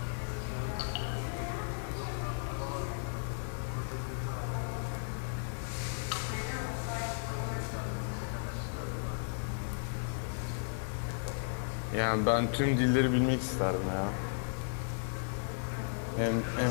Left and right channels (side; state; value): right; silent; digital silence